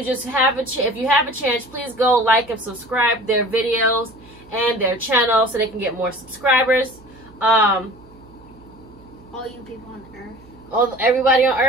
just have if you have a chance, please go like and subscribe their videos and their channel so they can get more subscribers. All you people on Earth. Everybody on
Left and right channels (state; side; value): noise; right; hum, 24 dB below the sound